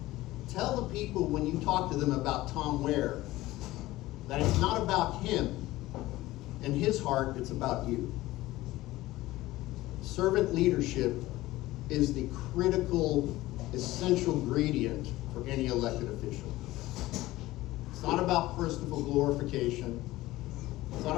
Tell the people when you talk to them about Tom Ware that it's not about him and his heart, it's about you. Servant leadership is the critical, essential ingredient for any elected official. It's not about personal glorification. It's not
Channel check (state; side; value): quieter; right; 17.5 dB